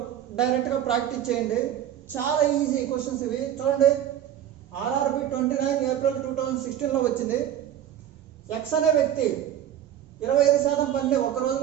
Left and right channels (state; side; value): quieter; left; 10.8 dB